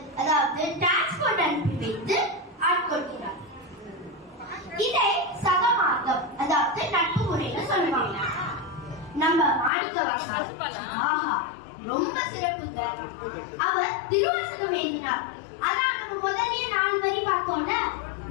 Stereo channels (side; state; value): right; drops out; at 9.7 s